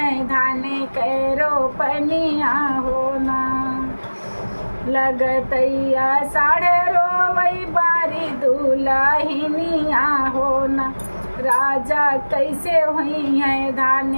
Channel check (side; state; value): both; inverted; correlation -1.00